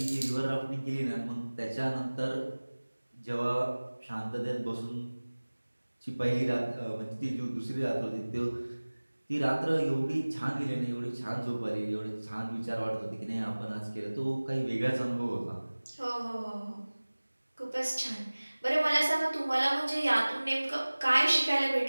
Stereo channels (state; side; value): inverted; both; correlation -1.00